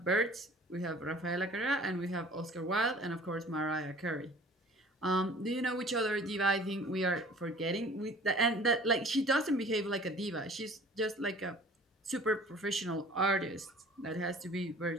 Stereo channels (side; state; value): both; normal; correlation 0.48